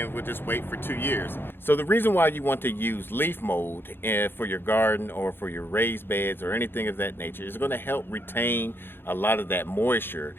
we'll just wait for 2 years. So the reason why you want to use leaf mold for your garden or for your raised beds or anything of that nature is going to help retain a lot of that moisture,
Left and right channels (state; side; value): late; right; 0.10 ms